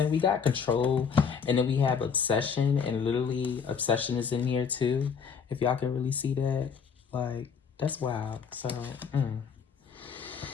we got control, and then we have obsession, and literally obsession is in here too. If y'all can really see that, like, that's wild. So,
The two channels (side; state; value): right; quieter; 6.4 dB